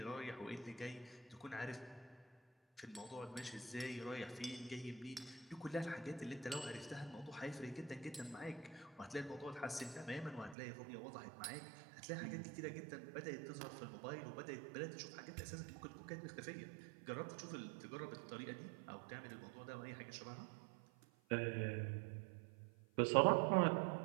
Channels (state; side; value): drops out; left; at 10.6 s